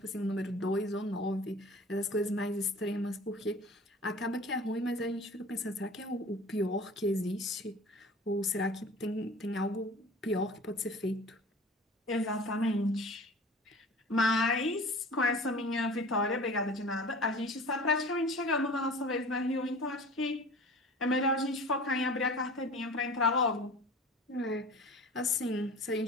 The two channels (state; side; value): normal; both; correlation 0.41